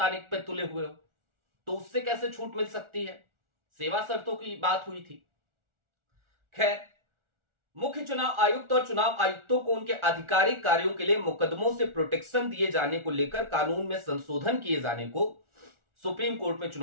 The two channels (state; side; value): late; left; 1.4 ms